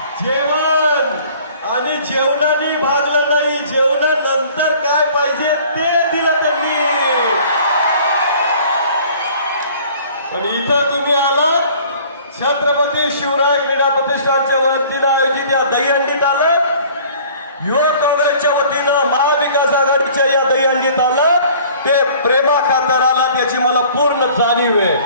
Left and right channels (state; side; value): inverted; both; correlation -0.51